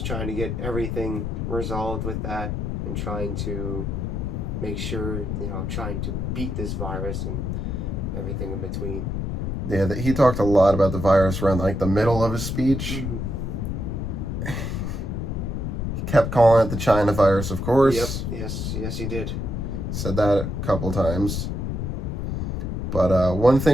trying to get everything resolved with that and trying to make sure, trying to beat this virus and everything in between. Yeah, he talked a lot about the virus around like the middle of his speech. Mm-hmm. He kept calling it the China virus, of course. Yep. Yes, he did. Said that a couple times. But one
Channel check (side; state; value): left; noise; rumble, 2 dB below the sound